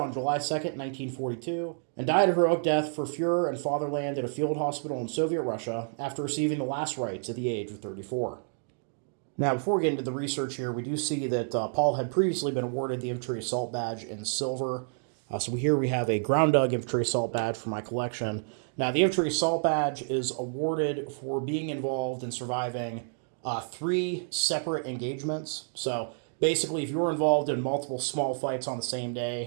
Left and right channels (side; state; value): left; silent; digital silence